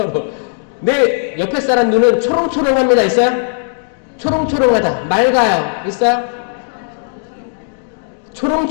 내 옆에 사람 눈은 초롱초롱합니다. 있어요? 초롱초롱하다. 맑아요. 있어요?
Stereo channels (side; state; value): right; silent; digital silence